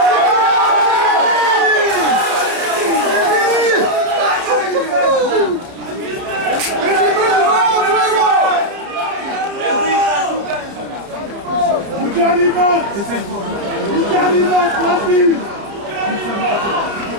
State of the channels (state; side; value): late; left; 30 ms